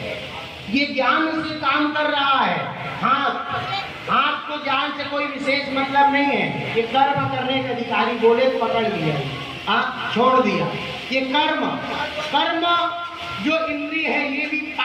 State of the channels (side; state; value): both; identical; correlation 1.00